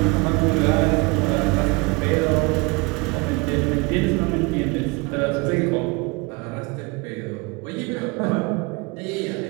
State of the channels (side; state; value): left; quieter; 27.5 dB